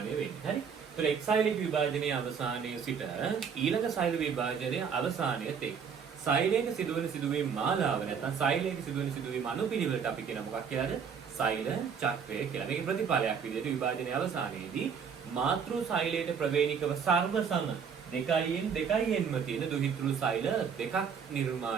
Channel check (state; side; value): quieter; left; 6.7 dB